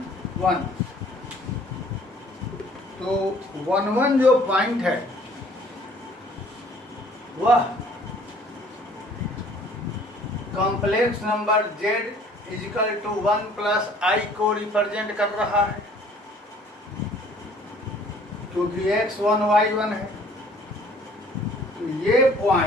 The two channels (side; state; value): both; normal; correlation 0.55